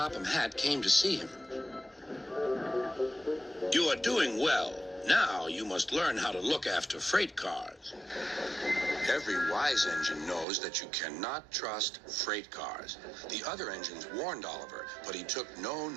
Hatt came to see him. You are doing well. Now you must learn how to look after freight cars. Every wise engine knows that you cannot trust freight cars. The other engines warned Oliver, but he took no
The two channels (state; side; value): drops out; left; at 10.5 s